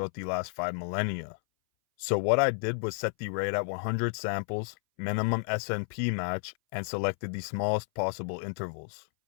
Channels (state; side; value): silent; right; 57 dB below the other